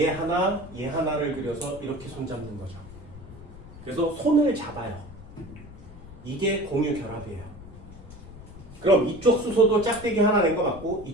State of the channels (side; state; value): left; noise; rumble, 16 dB below the sound